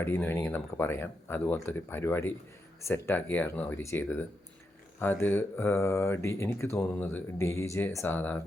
എന്ന് വേണമെങ്കിൽ നമുക്ക് പറയാം, അതുപോലത്തെ ഒരു പരിപാടി സെറ്റാക്കിയായിരുന്നു അവർ ചെയ്തത്. അത് എനിക്ക് തോന്നുന്നത് DJ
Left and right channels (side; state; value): both; normal; correlation 0.84